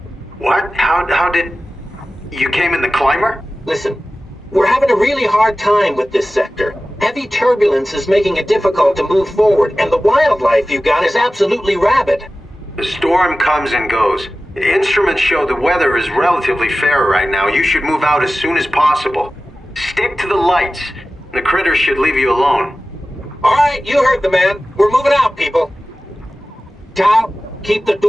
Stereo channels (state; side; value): normal; both; correlation 0.95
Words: What? How did... You came in the climber? Listen, we're having a really hard time with this sector. Heavy turbulence is making it difficult to move forward, and the wildlife you got is absolutely rabid. The storm comes and goes. The instruments show the weather is relatively fair right now. You should move out as soon as possible. Stick to the lights. The critters should leave you alone. All right, you heard the man. We're moving out, people. Tao, keep the